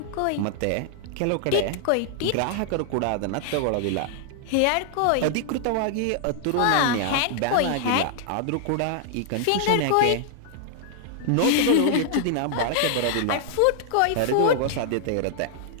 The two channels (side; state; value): both; different; correlation 0.00